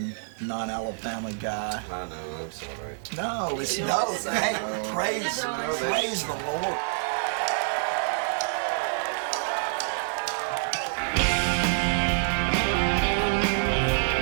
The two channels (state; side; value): silent; left; digital silence